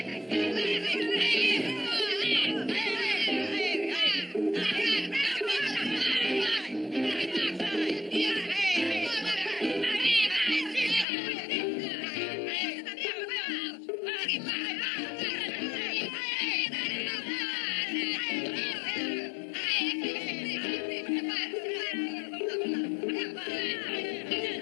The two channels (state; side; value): drops out; right; at 11.1 s